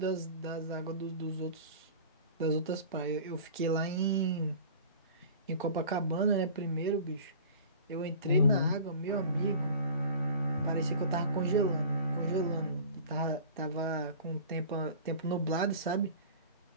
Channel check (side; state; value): both; inverted; correlation -0.40